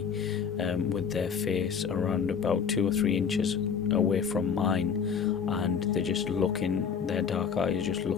with their face around about 2 or 3 inches away from mine, and they're just looking, their dark eyes just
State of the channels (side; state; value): right; quieter; 6.7 dB